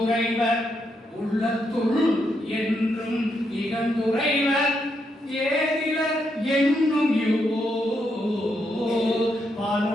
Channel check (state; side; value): normal; both; correlation 0.80